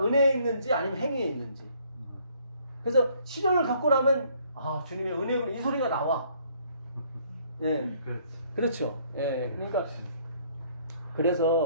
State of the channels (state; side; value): inverted; both; correlation -0.63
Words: 은혜에 있는지 아니면 행위에 있는지. 그래서 시련을 겪고 나면 주님의 은혜로 이 소리가 나와. 예, 그렇죠. 예, 그러니까